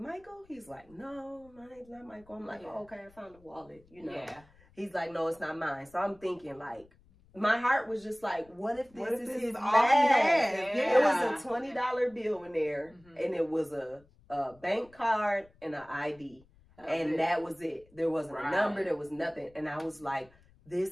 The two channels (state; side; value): noise; left; rumble, 28 dB below the sound